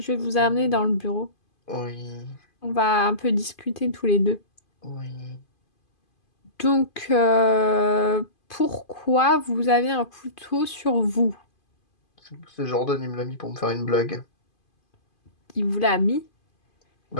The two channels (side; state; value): right; late; 2.5 ms